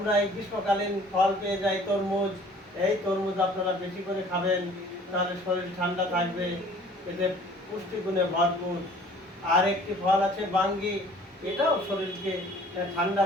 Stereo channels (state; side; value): normal; both; correlation 0.52